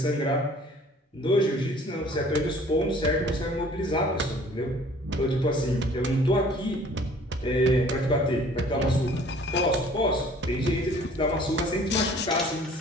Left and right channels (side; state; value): both; normal; correlation 0.53